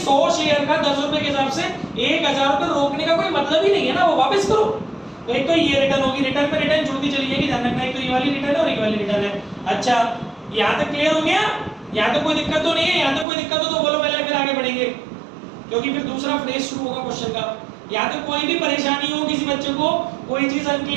शेयर का 10 रुपए के हिसाब से 1,000 रुपए रोकने का कोई मतलब ही नहीं है ना, वो वापस करो। तो एक तो ये रिटर्न होगी, रिटर्न पे रिटर्न जुड़ती चली जाएगी, ध्यान रखना। एक तो ये वाली रिटर्न है और एक वाली रिटर्न है। अच्छा यहाँ तक क्लियर हो गया? यहाँ तक कोई दिक्कत तो नहीं है? यहाँ तक कोई दिक्कत हो तो बोलो पहले, फिर आगे बढ़ेंगे, क्योंकि फिर दूसरा फ्रेज शुरू होगा क्वेश्चन का। यहाँ तक कोई भी परेशानी हो, किसी बच्चे को कोई चीज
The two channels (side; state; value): left; drops out; at 13.2 s